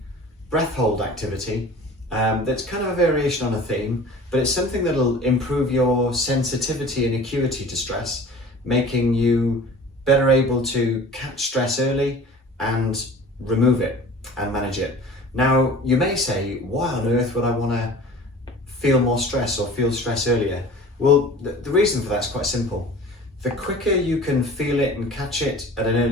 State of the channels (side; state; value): both; normal; correlation 0.42